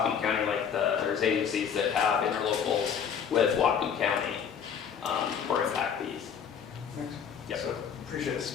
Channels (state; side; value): quieter; right; 7.5 dB